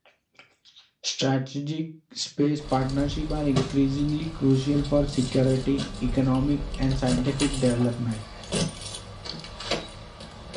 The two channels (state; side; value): identical; both; correlation 1.00